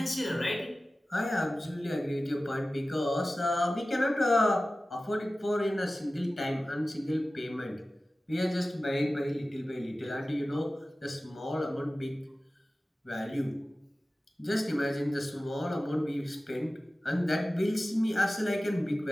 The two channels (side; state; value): both; normal; correlation 0.96